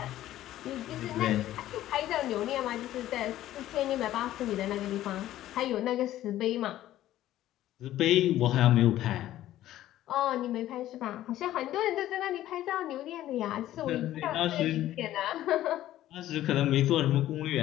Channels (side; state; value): right; quieter; 13.7 dB